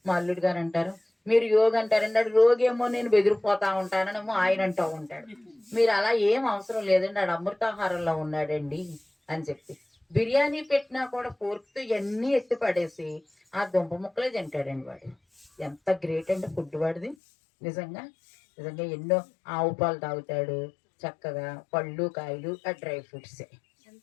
మా అల్లుడు గారు అంటారు, మీరు యోగి అంటారండి, ఆడు రోగి ఏమో నేను బెదిరిపోతా ఉంటాననేమో ఆయన అంటూ ఉంటాడు. మీరు అలా ఏం అవసరం లేదండి, ఆడు అమృతాహారంలో ఉన్నాడండి అని చెప్పి. బిర్యానీ పెట్టినా కూడా ఫోర్క్తో ఇవన్నీ ఎత్తి పడేసి ఆ దుంప ముక్కలే తింటాడండి వాడు. ఎంత గ్రేట్ అండి ఫుడ్ వాడిది. నిజంగా నిజంగా ఎన్నో ఆవు పాలు తాగుతాడు చక్కగా, పళ్ళు కాయలు ఆ డ్రై ఫ్రూట్సే.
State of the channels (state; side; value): drops out; right; at 17.2 s